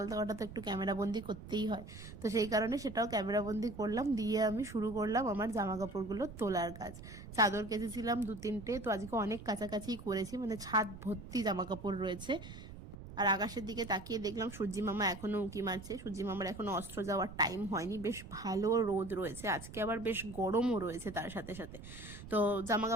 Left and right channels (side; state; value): right; noise; rumble, 13 dB below the sound